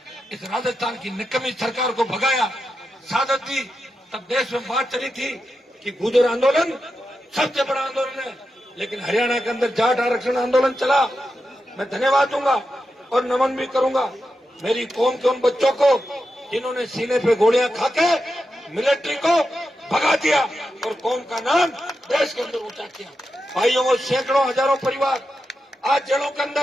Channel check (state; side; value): normal; both; correlation 0.88